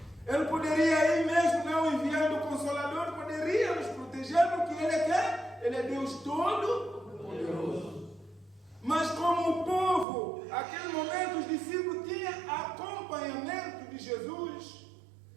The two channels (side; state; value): left; drops out; at 10.1 s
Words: Ele poderia aí mesmo, não enviando o Consolador, poderia nos proteger, porque Ele é quem? Ele é Deus Todo-Poderoso. Mas como o povo, naquele momento, os discípulos tinham acompanhamento de Jesus,